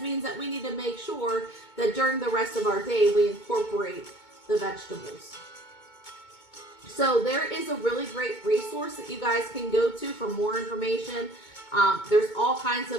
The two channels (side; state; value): right; late; 2.2 ms